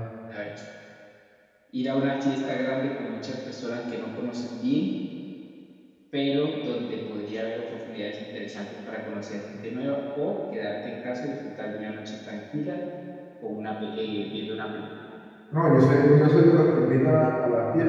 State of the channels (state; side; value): identical; both; correlation 1.00